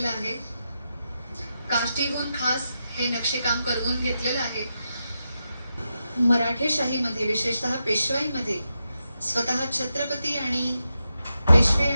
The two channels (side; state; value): both; inverted; correlation -0.87